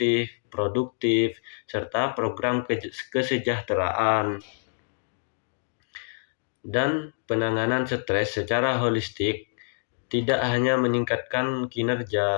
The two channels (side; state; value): right; silent; digital silence